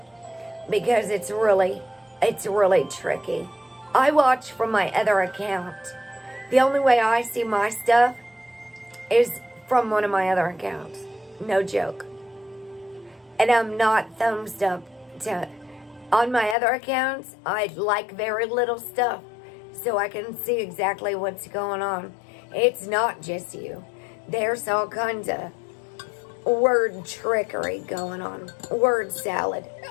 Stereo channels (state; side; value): drops out; right; at 16.6 s